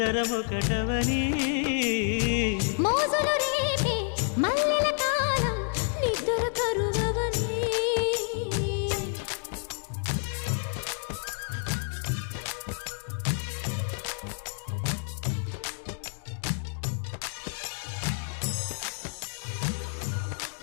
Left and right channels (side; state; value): right; silent; 59 dB below the other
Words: మోజులు రేపే మల్లెల కాలం, నిద్ర కరువవని.